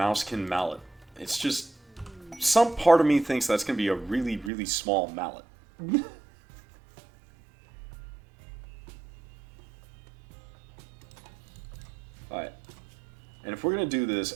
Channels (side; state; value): left; drops out; at 4.5 s